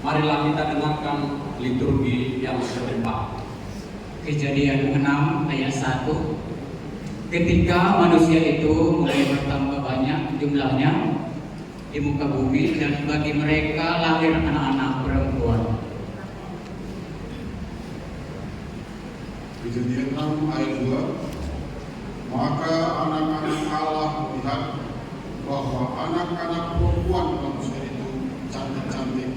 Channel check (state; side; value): identical; both; correlation 1.00